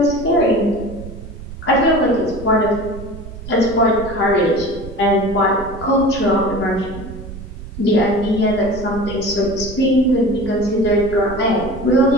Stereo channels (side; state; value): right; noise; rumble, 13 dB below the sound